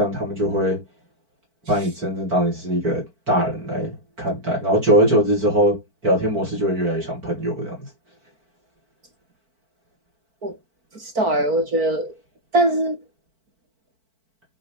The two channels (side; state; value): left; late; 4.5 ms